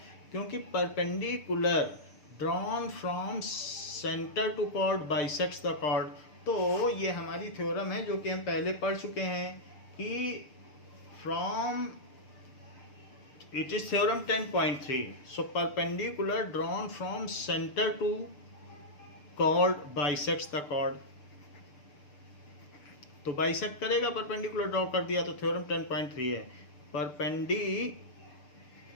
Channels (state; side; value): late; right; 6.8 ms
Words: क्योंकि perpendicular drawn from centre to chord bisects the chord. तो ये हमारी थ्योरम है जो कि हम पहले पढ़ चुके हैं कि from it is theorem 10.3। So perpendicular drawn from centre to chord bisects the chord. तो बाइसेक्ट करेगा, परपेंडिकुलर ड्रॉ कर दिया, तो थ्योरम 10.3 है। Perpendicular